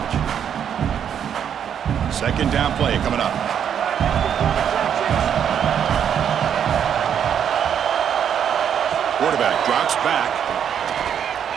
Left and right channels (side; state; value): left; quieter; 8.6 dB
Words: Second down play coming up. Quarterback drops back.